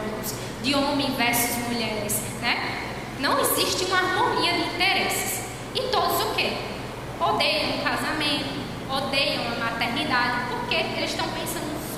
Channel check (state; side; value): identical; both; correlation 1.00